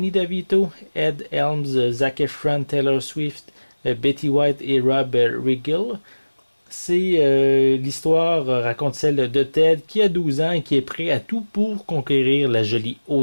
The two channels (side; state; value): both; inverted; correlation -1.00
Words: DeVito, Ed Helms, Zac Efron, Taylor Swift, Betty White et Rob Riggle. L'histoire raconte celle de Ted qui a 12 ans et qui est prêt à tout pour conquérir la jolie